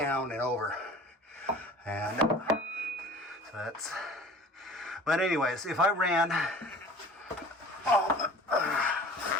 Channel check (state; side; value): normal; both; correlation 0.44